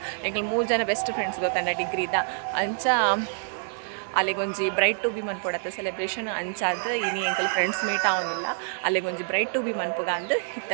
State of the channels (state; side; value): silent; left; digital silence